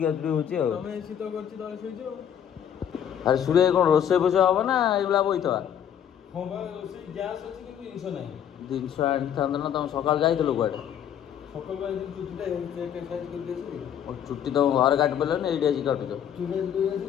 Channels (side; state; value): right; quieter; 9.3 dB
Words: ଗାଚୁଡ଼ି ହେଉଛି ଆଉ। ତମେ ଶୀତ କରୁଛି ତଳେ ଶୋଇଛ ଆଉ। ଆରେ ସୁରେ କ'ଣ ରୋଷେଇ ଫୋଷେଇ ହେବ ନା ଏଇଭଳିଆ ବଇଥବା। ହଁ ବା ରୋଷେଇ ଗ୍ୟାସ୍ ଅଛି କିନ୍ତୁ ଜିନିଷ ନାହିଁ। ଜିନିଷ ଆଣିଥାନ୍ତ ନା ତମେ ସକାଳୁ ଯାଇଥିଲ କୁଆଡ଼େ। ସକାଳୁ ଆଜି ଚୁଟିଟା ଏକ୍ସରସାଇଜ୍ କରିକି ଆସିଲି। ଚୁଟି ତମ ଘରେ କାଟି ପାରିଲନି ଏଇଠି ଆସିକି କାଟୁଛ। ଚୁଟି ଧୋଇ